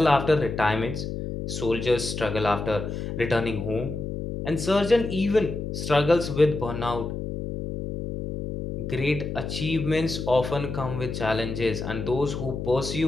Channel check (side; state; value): left; noise; hum, 5 dB below the sound